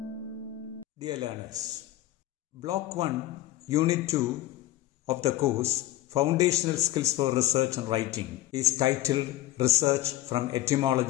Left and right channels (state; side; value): quieter; right; 14.8 dB